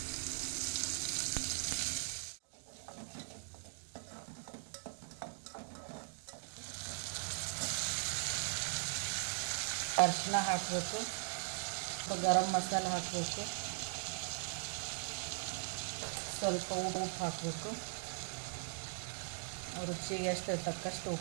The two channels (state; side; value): silent; left; digital silence